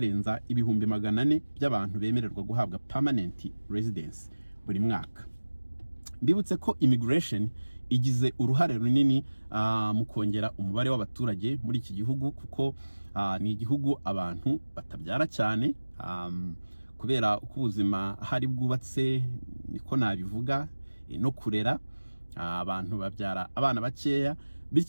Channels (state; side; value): inverted; both; correlation -1.00